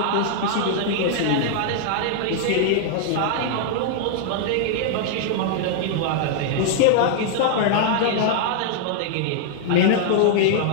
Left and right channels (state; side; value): different; both; correlation -0.01